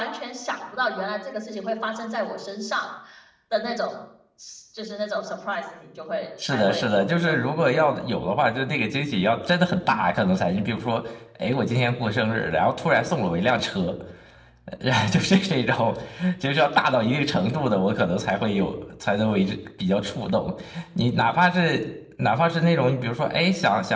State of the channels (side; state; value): both; identical; correlation 1.00